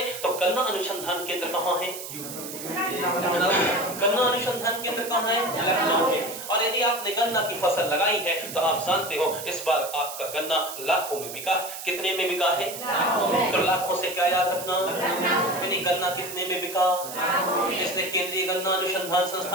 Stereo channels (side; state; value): right; noise; hiss, 10 dB below the sound